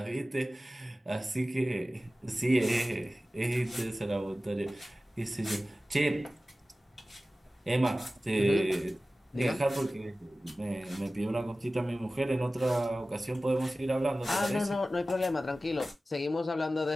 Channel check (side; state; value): both; normal; correlation 0.96